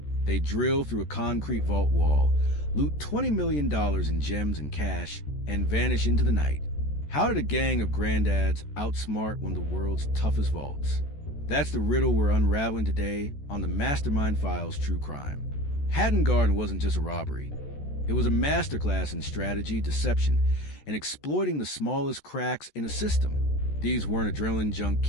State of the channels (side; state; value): right; late; 14 ms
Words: They drill through a concrete vault wall, loot $20 million in gems and cash, and vanish into the night. How did a gang of Granddads outsmart one of the world's toughest vaults? That's the riddle we're unraveling today on the Mastermind Files True Crime. Hatton Garden wasn't just a robbery. It was a masterclass in strategy, deception, and exploiting the smallest cracks in a system. These weren't adrenaline-junk